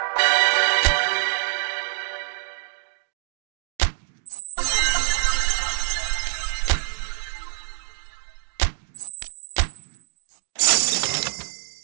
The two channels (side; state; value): left; silent; digital silence